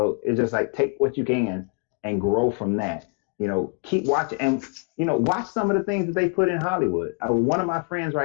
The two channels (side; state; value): right; quieter; 35.1 dB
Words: it's just like, take what you can and grow from that. Keep watching and watch some of the things that they put in Hollywood. One of my friends